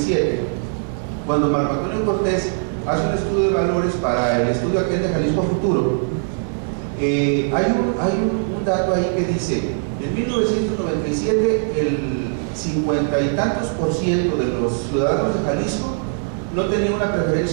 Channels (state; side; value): silent; left; 65 dB below the other